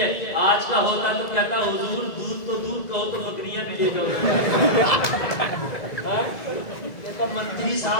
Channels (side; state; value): right; late; 2.0 ms